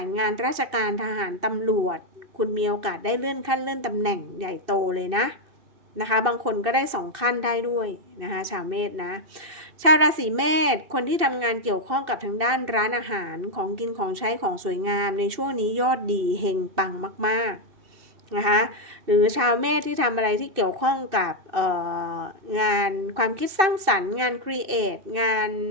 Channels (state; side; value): late; left; 2.6 ms